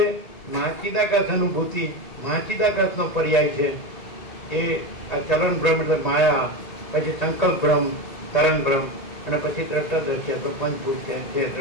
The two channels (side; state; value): right; late; 1.9 ms